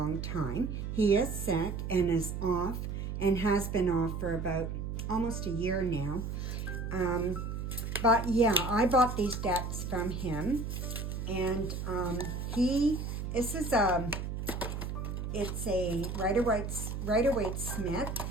time. He is sick and is off and has been off for about almost a year now. But yeah, I bought these decks from him. And this is it's a Rider-Waite-Smith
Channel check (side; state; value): right; noise; hum, 4 dB below the sound